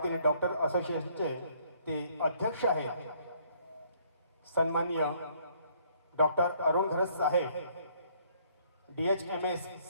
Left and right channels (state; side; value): inverted; both; correlation -0.64